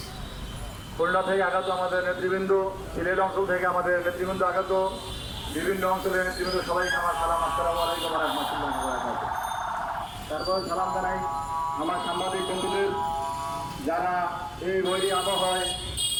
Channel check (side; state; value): both; identical; correlation 1.00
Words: খুলনা থেকে আগত আমাদের নেতৃবৃন্দ, সিলেট অঞ্চল থেকে আমাদের নেতৃবৃন্দ আগত, বিভিন্ন অঞ্চলের নেতৃবৃন্দ সবাইকে আমার সালাম। আসসালামু আলাইকুম ওয়া রাহমাতুল্লাহি ওয়া বারাকাতুহু। তারপর সালাম জানাই আমার সাংবাদিক বন্ধুদের, যারা এই বৈরী আবহাওয়ায়